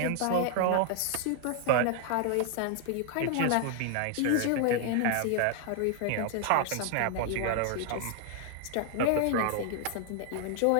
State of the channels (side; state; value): both; different; correlation 0.00